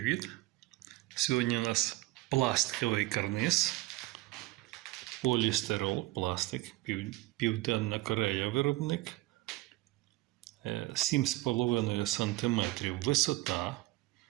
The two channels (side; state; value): left; quieter; 18.6 dB